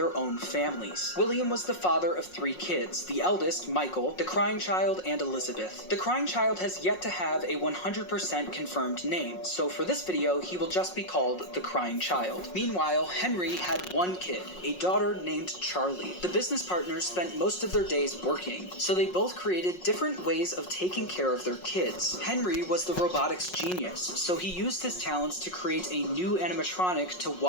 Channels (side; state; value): right; late; 5.5 ms